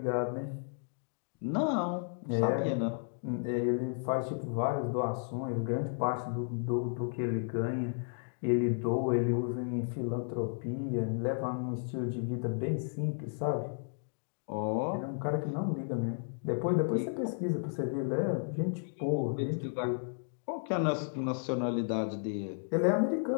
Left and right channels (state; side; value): silent; right; digital silence